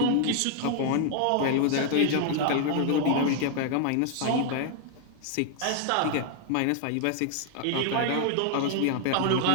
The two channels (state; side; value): different; both; correlation 0.00